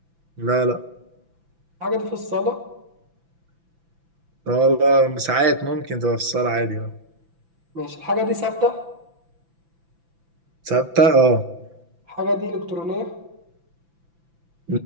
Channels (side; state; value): left; late; 6.0 ms